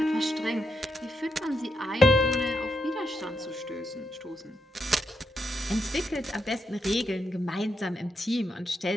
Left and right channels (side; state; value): both; normal; correlation 0.82